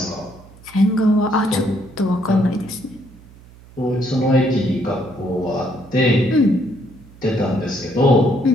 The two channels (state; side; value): noise; right; hum, 23 dB below the sound